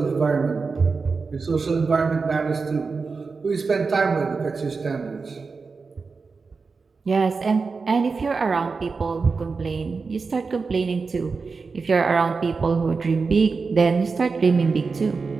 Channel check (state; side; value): quieter; left; 4.6 dB